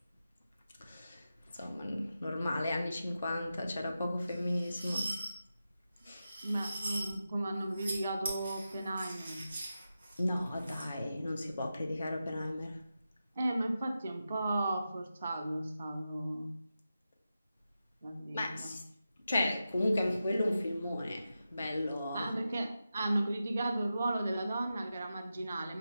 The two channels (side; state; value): both; inverted; correlation -0.90